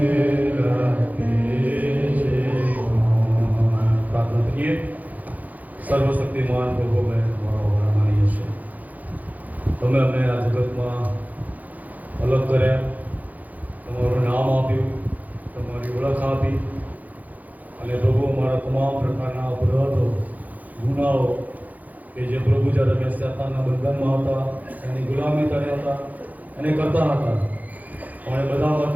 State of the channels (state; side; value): late; left; 0.079 ms